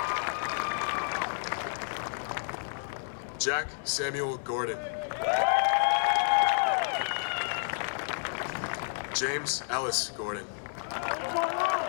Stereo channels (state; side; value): silent; right; digital silence